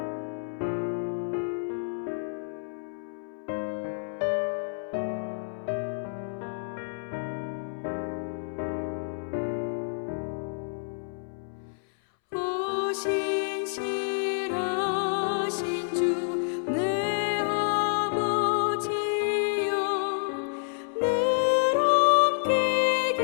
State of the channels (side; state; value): right; silent; 59 dB below the other